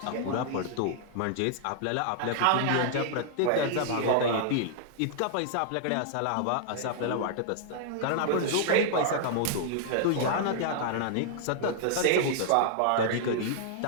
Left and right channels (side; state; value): both; different; correlation -0.01